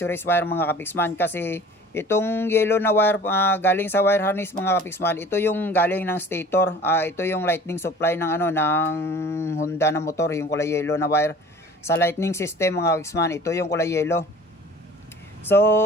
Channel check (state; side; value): normal; both; correlation 0.45